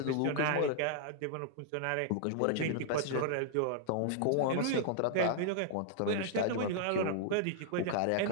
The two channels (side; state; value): both; different; correlation -0.01